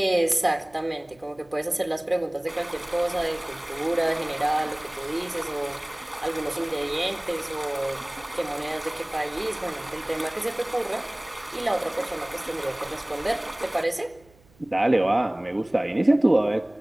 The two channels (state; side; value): noise; right; hum, 29 dB below the sound